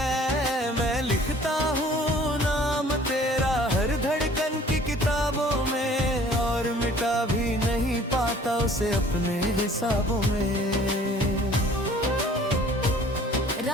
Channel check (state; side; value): normal; both; correlation 0.52